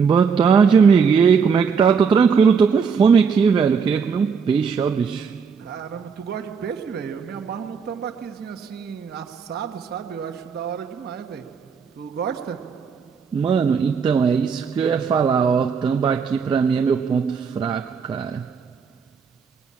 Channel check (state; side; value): quieter; left; 6.0 dB